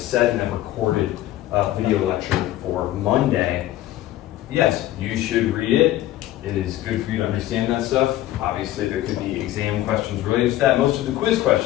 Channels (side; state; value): right; quieter; 14.4 dB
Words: in that recorded video lecture for Monday, yes, you should read it. It is good for you to understand that stuff. Obviously there could be exam questions related to that. Most of the quiz